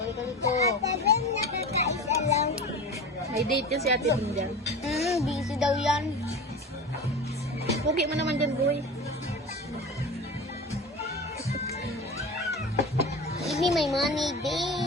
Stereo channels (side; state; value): both; normal; correlation 0.31